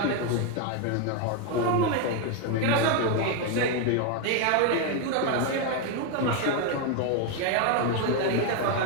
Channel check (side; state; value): both; different; correlation 0.01